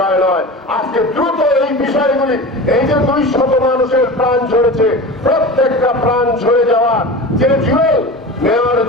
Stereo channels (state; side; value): normal; both; correlation 0.32